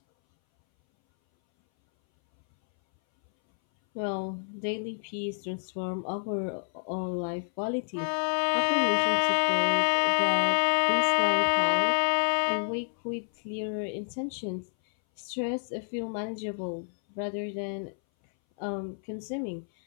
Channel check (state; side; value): silent; right; 59 dB below the other